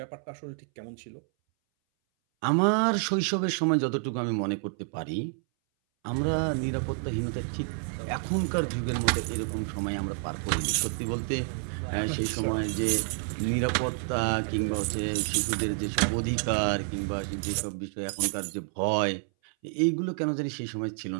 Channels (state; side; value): silent; left; 59 dB below the other